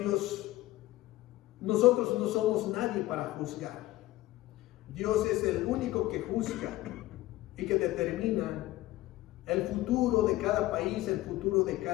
nosotros no somos nadie para juzgar. Dios es el único que juzga y que determina el futuro de cada país, el futuro de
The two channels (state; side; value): quieter; right; 17.2 dB